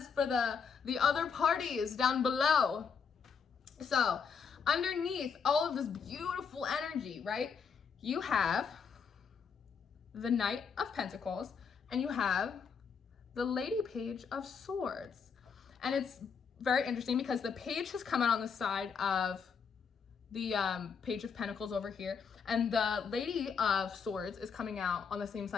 for the other parties down below. So underneath all of this beautiful energy, right? You have the Knight of Pentacles and you have the Lady Page of Swords. And it's very interesting because the page has come out on the side of the Page of Pentacles over here, and the Lady of Swords is coming out on the same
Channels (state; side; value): quieter; right; 6.2 dB